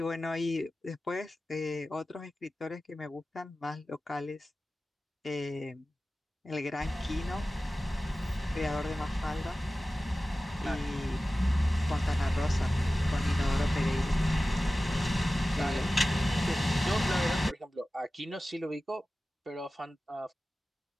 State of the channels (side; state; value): both; normal; correlation 0.96